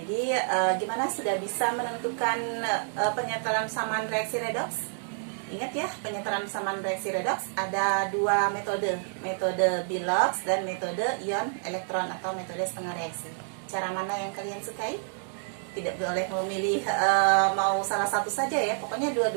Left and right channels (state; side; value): silent; left; digital silence